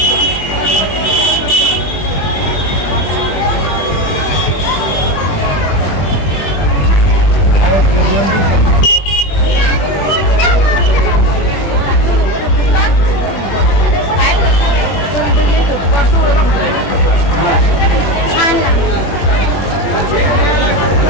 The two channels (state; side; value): late; right; 21 ms